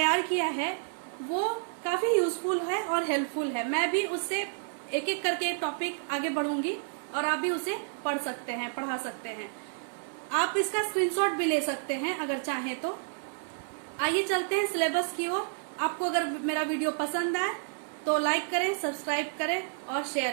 किया है वो काफी यूजफुल है और हेल्पफुल है। मैं भी उससे एक एक करके टॉपिक आगे बढ़ूंगी और आप भी उसे पढ़ सकते हैं, पढ़ा सकते हैं। आप इसका स्क्रीनशॉट भी ले सकते हैं अगर चाहें तो। आइए चलते हैं सिलेबस की ओर। आपको अगर मेरा वीडियो पसंद आए तो लाइक करें, सब्सक्राइब करें और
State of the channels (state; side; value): silent; left; 58 dB below the other